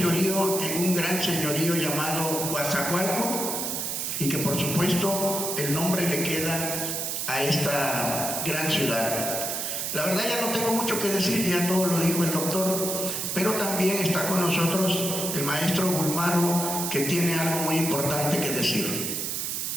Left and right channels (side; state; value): right; noise; hiss, 2 dB below the sound